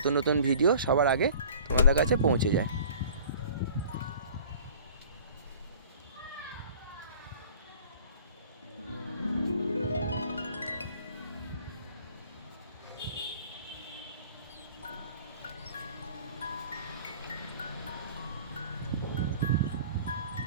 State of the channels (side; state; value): both; inverted; correlation -0.47